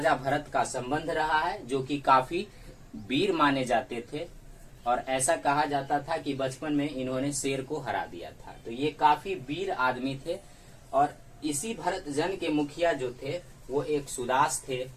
भरत का संबंध रहा है, जो कि काफी वीर माने जाते थे और ऐसा कहा जाता था कि बचपन में इन्होंने शेर को हरा दिया था। तो ये काफी वीर आदमी थे और इसी भरत जन के मुखिया जो थे वो एक सुदास थे,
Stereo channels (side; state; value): both; identical; correlation 1.00